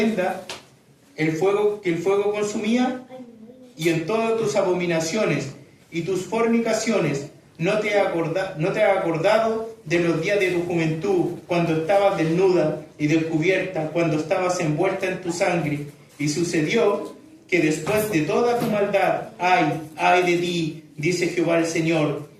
que el fuego consumía. Y en todas tus abominaciones y tus fornicaciones no te has acordado de los días de tu juventud, cuando estabas desnuda y descubierta, cuando estabas envuelta en tu sangre. Y sucedió que después de toda tu maldad, ay de ti, dice Jehová el Señor,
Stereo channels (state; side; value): identical; both; correlation 1.00